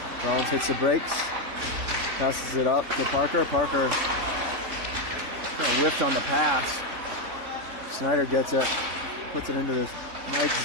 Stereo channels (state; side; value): late; left; 3.5 ms